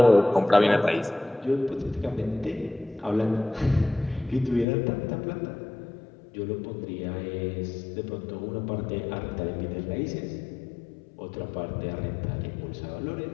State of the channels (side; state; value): right; drops out; at 4.7 s